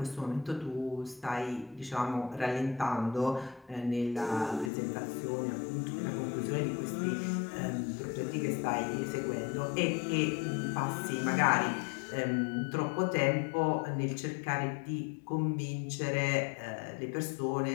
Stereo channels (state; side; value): drops out; right; at 4.7 s